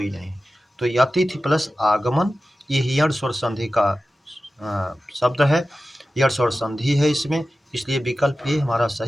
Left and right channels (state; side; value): normal; both; correlation 0.94